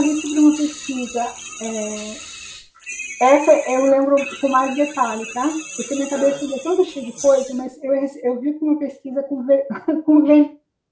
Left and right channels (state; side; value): identical; both; correlation 1.00